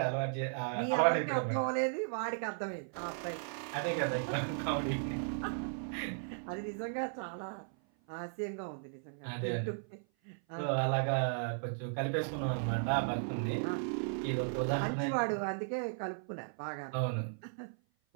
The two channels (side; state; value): left; silent; 54 dB below the other